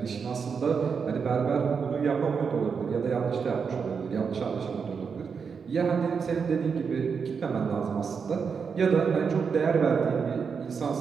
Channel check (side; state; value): left; quieter; 6.0 dB